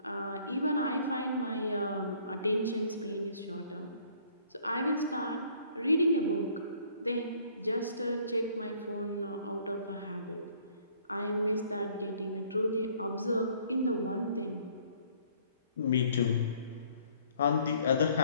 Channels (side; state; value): both; inverted; correlation -0.60